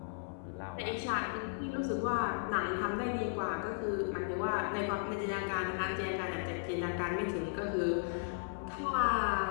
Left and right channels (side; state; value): right; silent; 54 dB below the other